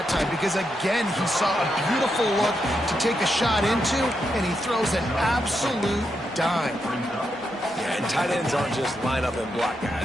time because, again, he saw a beautiful look to take a shot into, and he throws an absolute dime. Yeah, and tight ends aren't just line up and block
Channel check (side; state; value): both; normal; correlation 0.83